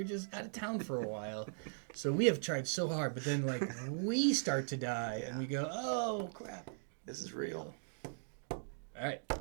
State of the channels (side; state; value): left; silent; digital silence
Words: just out of town for a while. So we have tried so hard, but then we start to die and we go, oh crap, this is real. All right,